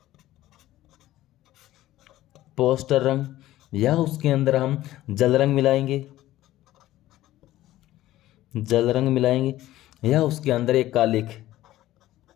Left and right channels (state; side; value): quieter; right; 15.0 dB